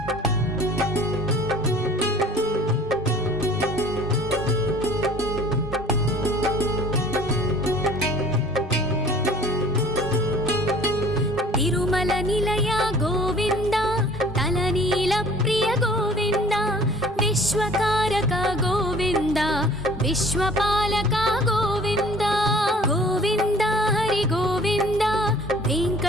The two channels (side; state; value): both; normal; correlation 0.50